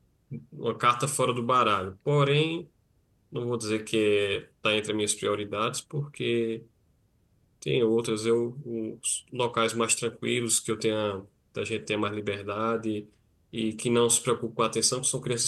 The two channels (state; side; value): identical; both; correlation 1.00